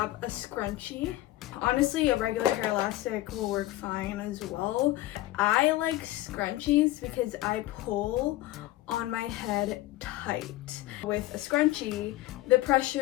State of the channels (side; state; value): right; quieter; 16.8 dB